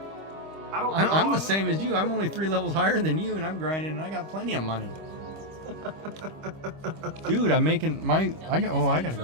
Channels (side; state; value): left; late; 25 ms